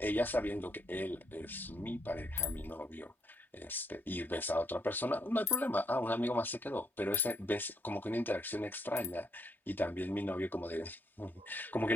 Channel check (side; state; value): both; normal; correlation 0.75